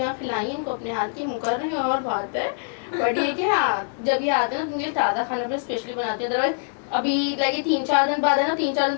खिलाई इनको अपने हाथ की, मुकर रही हूँ और बात है, बट ये कि हाँ जब ये आते हैं ना उनके लिए ताज़ा खाना भी स्पेशली बनाती है, अदरवाइज अभी लगे 3-4 दिन बाद है ना, 3-4 दिन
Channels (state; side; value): silent; right; digital silence